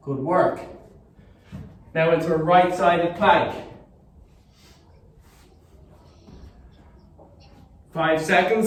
Good work. Now into a right-sided plank. 5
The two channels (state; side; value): identical; both; correlation 1.00